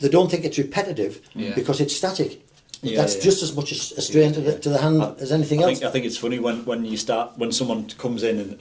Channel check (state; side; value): identical; both; correlation 1.00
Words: don't think it's repetitive because it's static. That's just as much a strain to the hand as anything else. I think it's funny when someone comes in